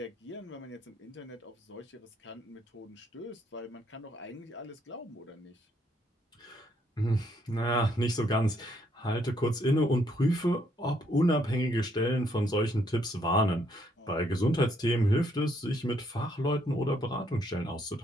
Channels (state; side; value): normal; both; correlation 0.71